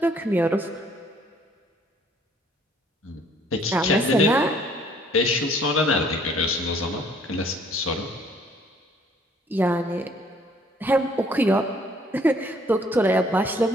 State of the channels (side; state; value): both; normal; correlation 0.60